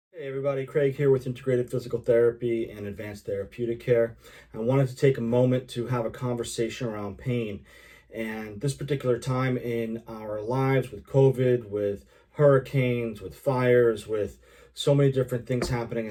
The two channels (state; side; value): identical; both; correlation 1.00